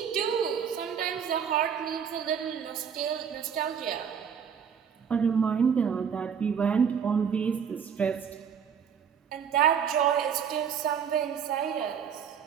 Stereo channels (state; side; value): quieter; left; 7.5 dB